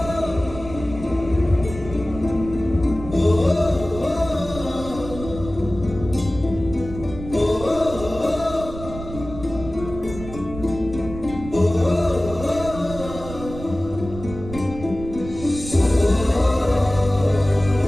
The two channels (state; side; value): noise; right; rumble, 12 dB below the sound